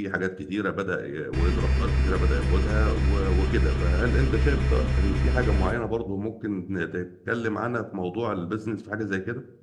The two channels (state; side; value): identical; both; correlation 1.00